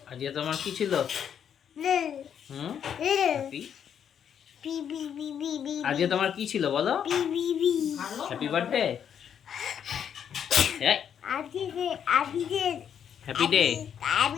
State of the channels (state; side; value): quieter; right; 8.5 dB